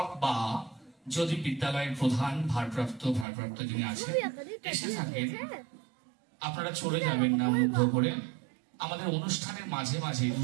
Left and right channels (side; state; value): left; drops out; at 3.2 s